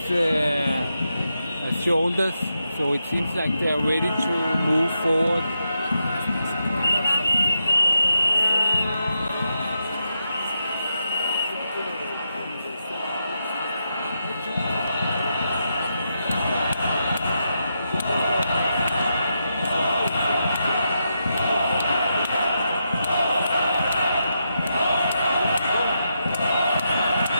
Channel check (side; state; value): both; inverted; correlation -0.84